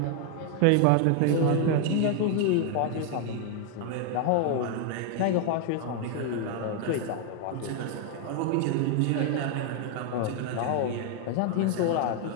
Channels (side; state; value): both; different; correlation 0.00